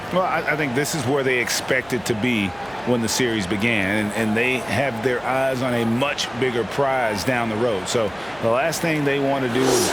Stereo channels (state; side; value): noise; right; hum, 24 dB below the sound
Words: Well, I think this is where they expected to be when the series began, and they have their eyes on a much bigger prize down the road. So the last thing they want to do is